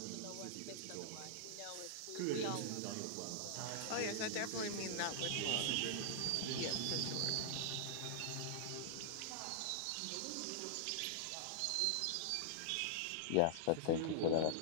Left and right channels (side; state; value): both; different; correlation -0.01